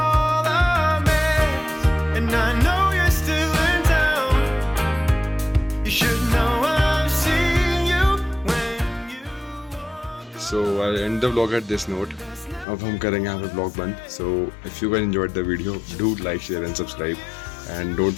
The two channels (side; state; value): right; drops out; at 12.7 s